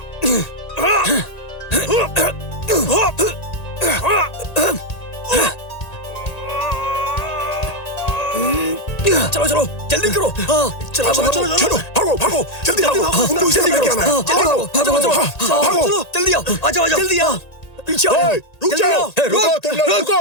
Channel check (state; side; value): late; right; 1.9 ms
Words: चलो चलो जल्दी करो। हाँ चलो चलो चलो चलो भागो भागो, जल्दी भागो। उनको इसे लेके आना है। भागो भागो भागो भागो। जल्दी आओ, आ जाओ जल्दी आओ। पीछे आओ, ओए, रुक जल्दी जाओ, आओ। रुको तुम लोग, रुको।